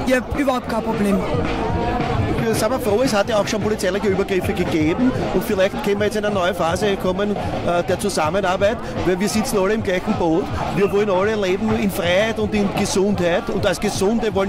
ich habe überhaupt kein Problem. Sind wir froh, es hat ja auch schon polizeiliche Übergriffe gegeben und vielleicht können wir jetzt in eine neue Phase kommen der Zusammenarbeit, weil wir sitzen alle im gleichen Boot. Wir wollen alle leben in Freiheit und in Gesundheit und als Gesunde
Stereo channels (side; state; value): both; identical; correlation 1.00